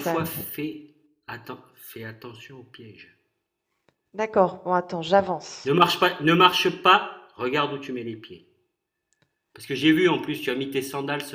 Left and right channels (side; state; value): both; identical; correlation 1.00